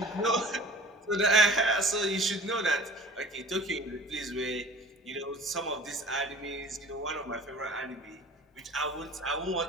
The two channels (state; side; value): normal; both; correlation 0.44